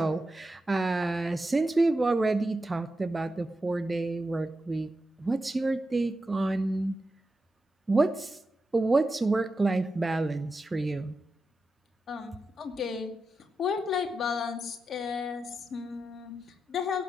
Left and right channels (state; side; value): normal; both; correlation 0.89